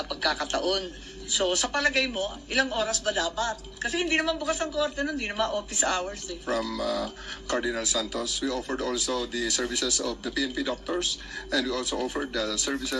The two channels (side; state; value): both; identical; correlation 1.00